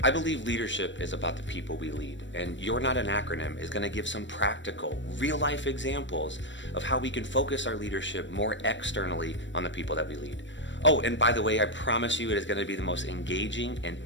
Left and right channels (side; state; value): right; late; 0.54 ms